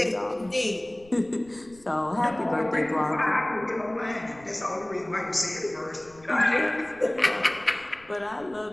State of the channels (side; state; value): left; noise; rumble, 26 dB below the sound